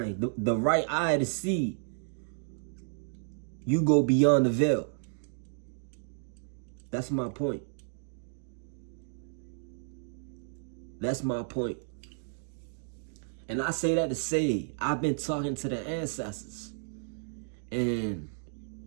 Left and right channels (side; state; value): left; silent; digital silence